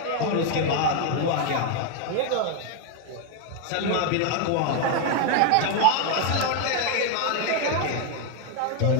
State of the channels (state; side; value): different; both; correlation 0.01